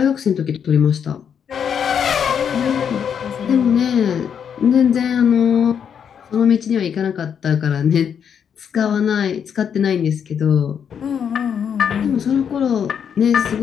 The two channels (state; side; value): quieter; right; 7.8 dB